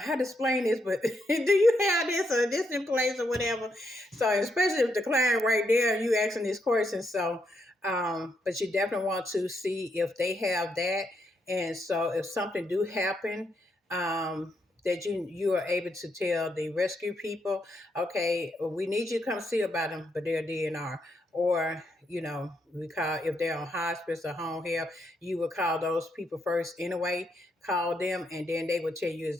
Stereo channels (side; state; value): both; normal; correlation 0.79